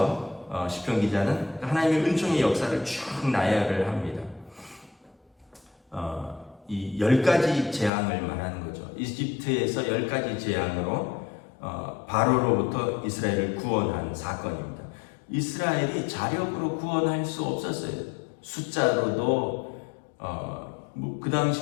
시편 기자는 하나님의 은총의 역사를 쭉 나열을 합니다. 이 10가지 재앙을 말하는 거죠. 이집트에서 10가지 재앙으로 바로로부터 이스라엘을 구원한 사건입니다. 이스라엘이 자력으로 구원할 수 없었어요. 숫자로도 그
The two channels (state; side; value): drops out; right; at 7.9 s